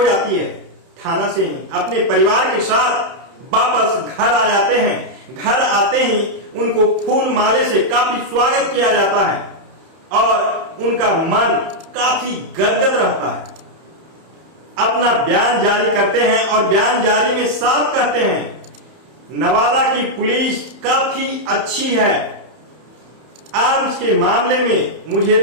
जाती है। थाना से ही अपने परिवार के साथ वापस घर आ जाते हैं। घर आते ही उनको फूल माले से काफी स्वागत किया जाता है और उनका मन काफी गदगद रहता है। अपना बयान जारी करते हैं और बयान जारी में साफ कहते हैं, नवादा की पुलिस काफी अच्छी है। आर्म्स के मामले में मुझे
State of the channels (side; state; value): left; late; 31 ms